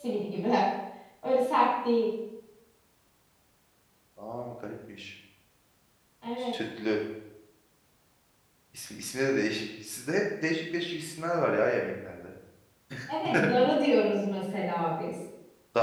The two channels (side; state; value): both; identical; correlation 1.00